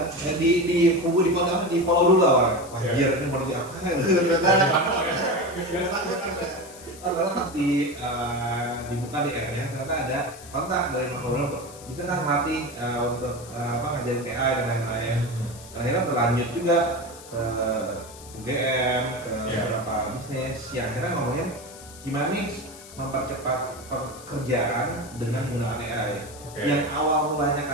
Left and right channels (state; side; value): noise; left; hiss, 18 dB below the sound